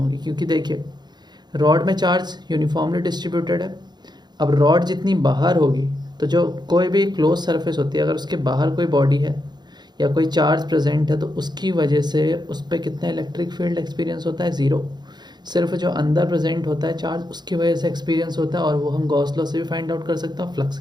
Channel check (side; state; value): left; late; 0.21 ms